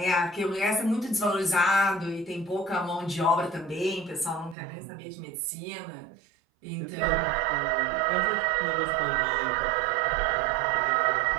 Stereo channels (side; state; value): left; drops out; at 4.5 s